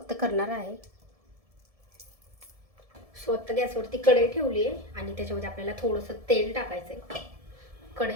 करणार आहे. सो आता गॅसवरती कढई ठेवली आहे आणि त्याच्यामध्ये आपल्याला थोडंसं तेल टाकायचं आहे.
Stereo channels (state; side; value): late; left; 1.7 ms